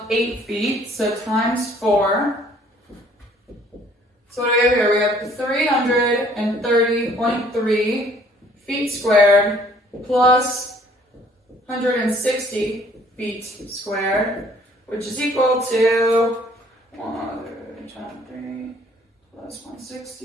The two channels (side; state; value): both; normal; correlation 0.59